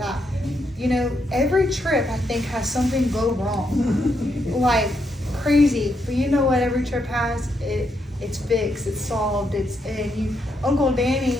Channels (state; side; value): normal; both; correlation 0.79